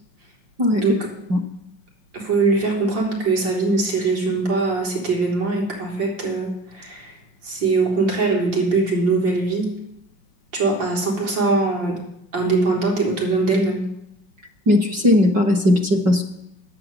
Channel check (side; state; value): left; late; 5.6 ms